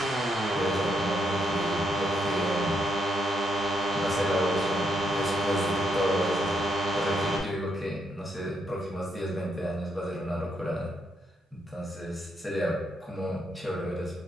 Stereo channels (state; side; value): normal; both; correlation 0.77